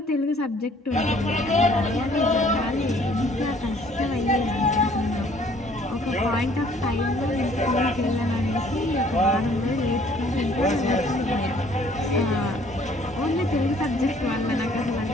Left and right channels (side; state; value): both; normal; correlation 0.58